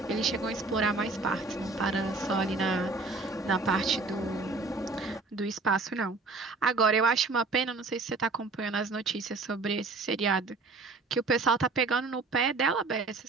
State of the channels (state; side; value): quieter; left; 3.8 dB